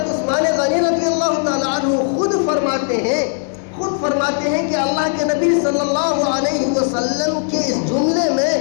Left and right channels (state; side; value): silent; right; 60 dB below the other